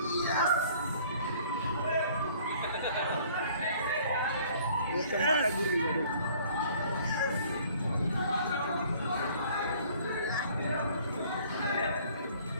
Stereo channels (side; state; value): both; inverted; correlation -0.55